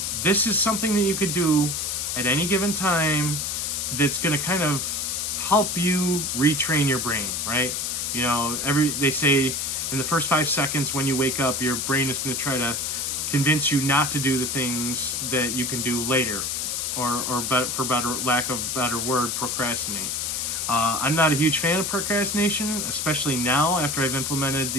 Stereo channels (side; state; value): left; noise; hiss, 1 dB below the sound